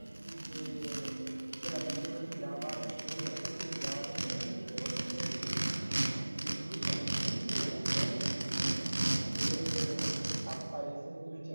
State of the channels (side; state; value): both; inverted; correlation -1.00